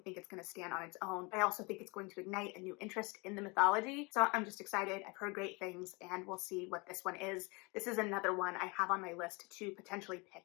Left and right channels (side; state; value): right; quieter; 28.2 dB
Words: it's going to stand on its own. I also think it's going to ignite a new interest in the mythology. So I'm just excited. I've heard great things, and we'll see what this one is. This is another one I have on my list to potentially